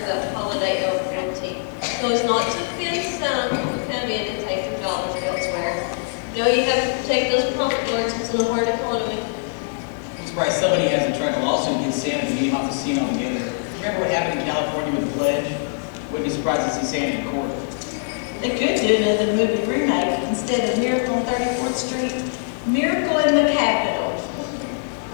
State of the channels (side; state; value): right; silent; digital silence